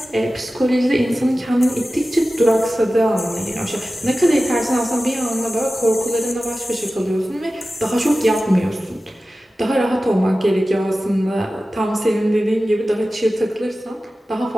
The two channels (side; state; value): both; normal; correlation 0.95